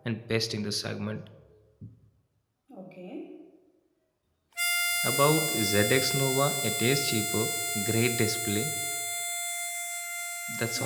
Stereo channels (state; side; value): identical; both; correlation 1.00